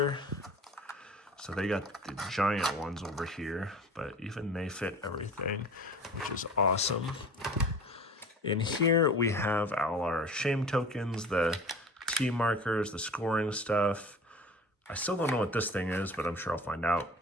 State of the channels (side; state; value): both; normal; correlation 0.41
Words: So they got the giant ones over here, but even they fit everything, which is awesome. In here, we have all our shame tokens, the T markers, the scoring stuff. I still don't know what this thing is, but I'm sure I'll find out.